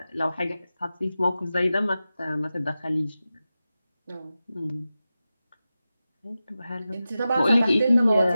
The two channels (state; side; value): inverted; both; correlation -0.93